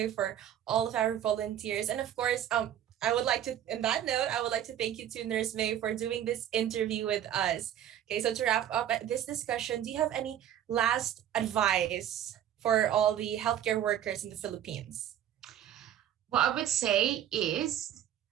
for all of our volunteers. And of course, I would like to thank you to Nurse May for doing this interview with us. Okay, so to wrap up this discussion, do you have any last advice for all the healthcare workers in the Philippines? What I would say is,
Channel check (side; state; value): left; quieter; 10.7 dB